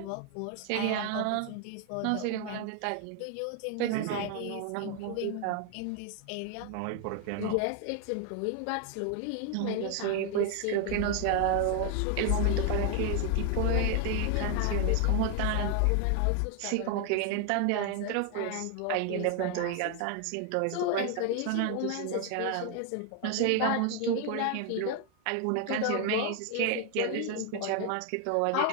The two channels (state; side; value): different; both; correlation 0.00